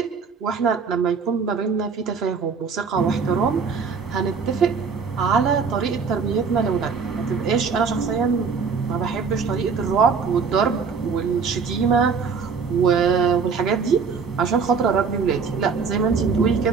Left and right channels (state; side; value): quieter; left; 5.5 dB